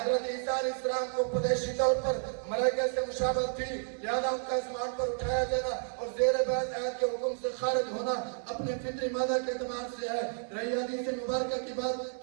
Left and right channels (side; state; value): left; silent; 57 dB below the other